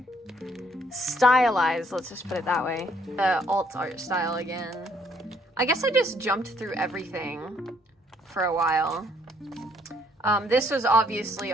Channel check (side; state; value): both; normal; correlation 0.67